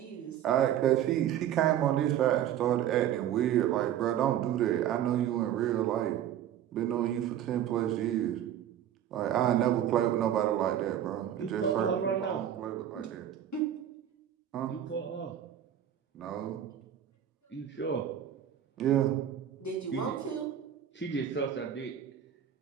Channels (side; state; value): left; quieter; 10.6 dB